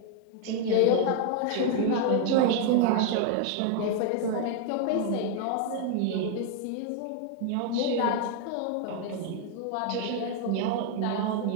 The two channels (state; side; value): different; both; correlation 0.00